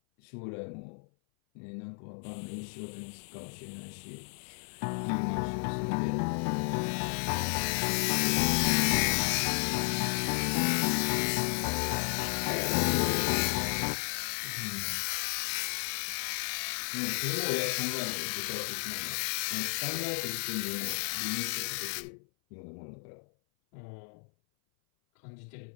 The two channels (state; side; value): silent; right; 56 dB below the other